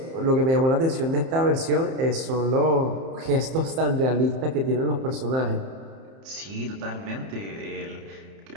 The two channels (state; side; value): late; left; 31 ms